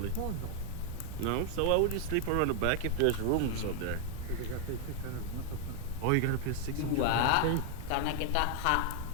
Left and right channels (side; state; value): both; different; correlation 0.00